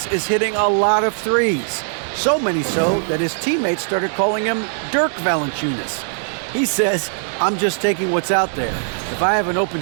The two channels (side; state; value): left; silent; digital silence